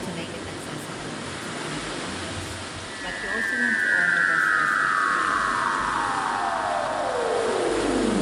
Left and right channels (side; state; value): both; identical; correlation 1.00